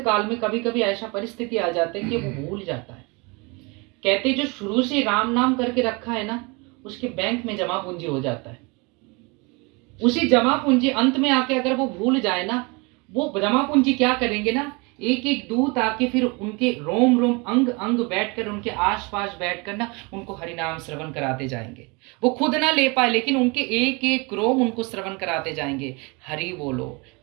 में कभी कभी ऐसा परिस्थिति आ जाती है कि वो भूल जाता है। कहते जो शुरू से राम नाम करके रखा है ना, उसके बैंक में जमा पूंजी हो जाता है। उसी जमा पूंजी अंत में आके अगर वो भूल जाए ना, वो जमा पूंजी क्या करेंगे ना, एक एक दूत आके फिर उनके रोम रोम अंग अंग बैठकर उनके आसपास बैठकर ना उनको हरिनाम श्रवण कराते जाएंगे। वो खुद ना ले पाए लेकिन उनके एक एक रोम उनको श्रवण कराते जाएंगे। हरि बोलो,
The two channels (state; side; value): quieter; left; 28.5 dB